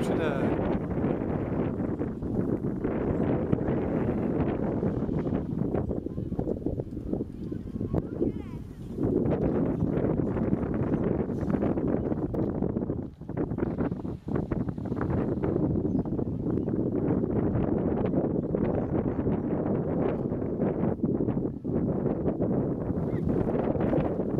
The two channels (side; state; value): both; identical; correlation 1.00